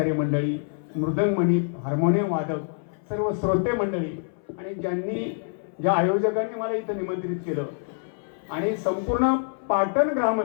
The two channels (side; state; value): right; silent; 58 dB below the other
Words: मंडळी, मृदंगमणी, हार्मोनियम वादक, सर्व श्रोते मंडळी आणि ज्या आयोजकांनी मला इथं निमंत्रित केलं आणि संपूर्ण पाटण